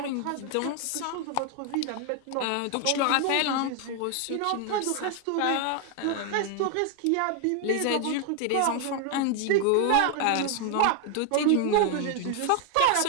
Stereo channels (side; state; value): both; different; correlation 0.00